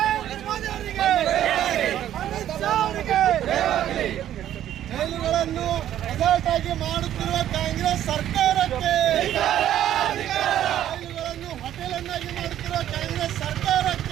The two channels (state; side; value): quieter; left; 11.6 dB